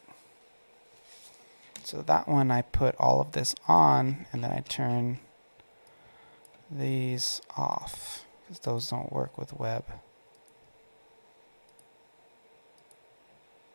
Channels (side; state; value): both; inverted; correlation -1.00